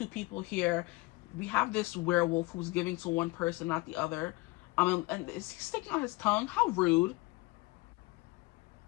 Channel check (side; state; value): right; quieter; 22.4 dB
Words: people here. We have this werewolf who's giving to one person, not the other. And is he sticking out his tongue? How rude.